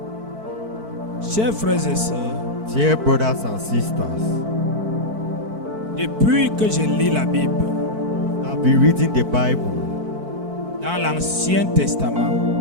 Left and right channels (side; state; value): left; late; 4.5 ms